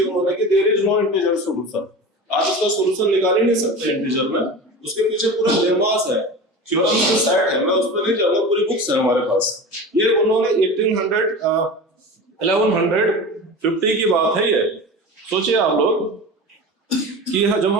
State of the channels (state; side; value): normal; both; correlation 0.31